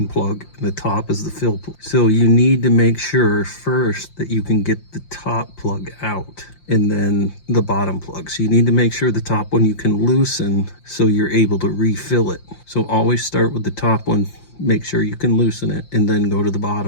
plug and the top is the fill plug. So you need to make sure first that you can get the top plug out and then the bottom plug. So you need to make sure the top one you can loosen so you're able to refill it. So always start with the top one, make sure you can loosen it, and then go to the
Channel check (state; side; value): late; right; 5.7 ms